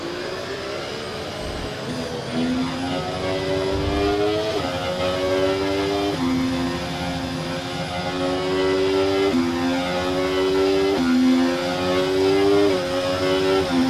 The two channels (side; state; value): both; identical; correlation 1.00